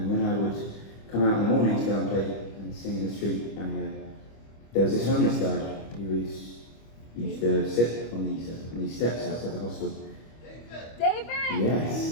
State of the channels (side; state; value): right; late; 25 ms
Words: when I would come out in the morning to go and play and sing in the street, there was this homeless guy who used to sit on these steps outside the hostel. David!